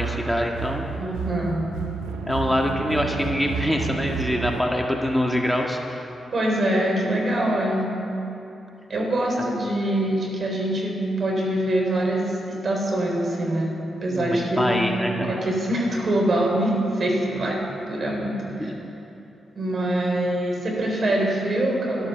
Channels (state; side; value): normal; both; correlation 0.83